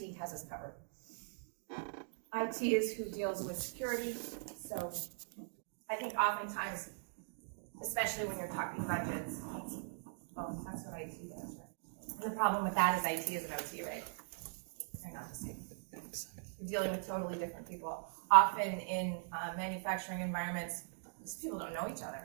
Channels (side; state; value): left; silent; digital silence